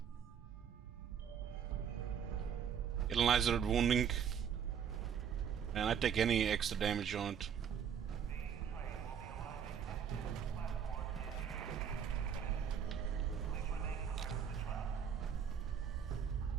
Analyzer wounding. And I take any extra damage on it.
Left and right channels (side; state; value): left; quieter; 7.9 dB